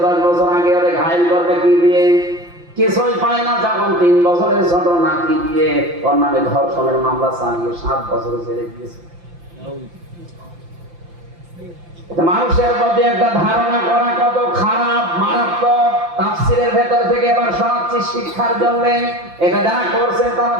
10 বছর আগে, ওরে ঘায়ল করবে কি দিয়ে, কিছুই পায় না। যখন 3 বছরের ছোট নাতি দিয়ে ওর নামে ধর্ষণের মামলা চালিয়ে 7 বছর জেলে দিয়েছে। মানুষের প্রতি একটা ধারণা করা কত খারাপ, মারাত্মক। তাফসীরের ভেতর থেকে এবার শোনাচ্ছি শিক্ষার জন্য। এটা যারা করছেন তারা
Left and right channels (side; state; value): left; late; 5.8 ms